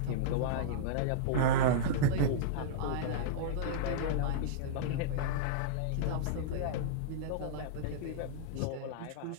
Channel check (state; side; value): different; both; correlation -0.03